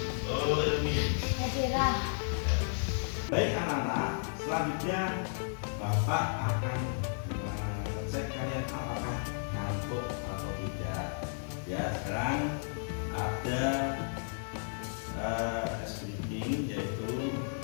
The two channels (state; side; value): silent; right; digital silence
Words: Ilmi. Baik anak-anak, selanjutnya Bapak akan cek kalian apakah ngantuk atau tidak. Ya, sekarang ada speaking, yaitu